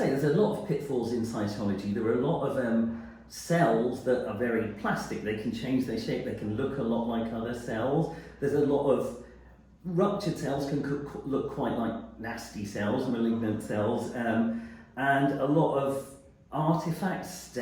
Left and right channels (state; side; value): identical; both; correlation 1.00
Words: there's a lot of pitfalls in cytology. There are a lot of cells that are very plastic. They can change their shape, they can look a lot like other cells. There's a lot of ruptured cells can look quite like nasty cells, malignant cells, and a lot of artifacts,